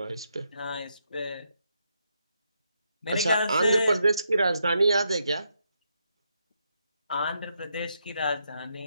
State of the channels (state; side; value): inverted; both; correlation -0.80